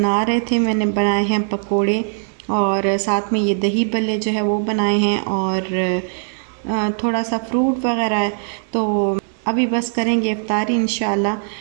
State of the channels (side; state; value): left; silent; 55 dB below the other